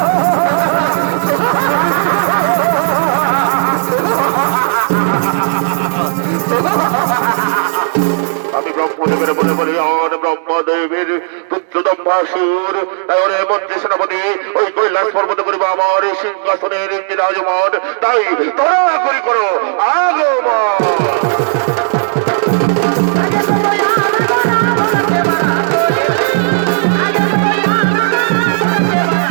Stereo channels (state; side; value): silent; left; digital silence